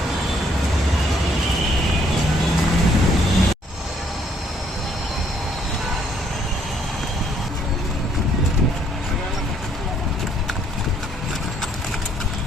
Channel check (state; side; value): normal; both; correlation 0.67